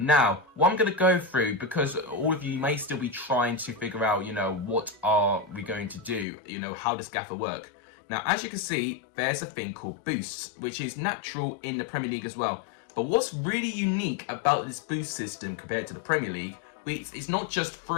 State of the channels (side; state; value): right; drops out; at 6.2 s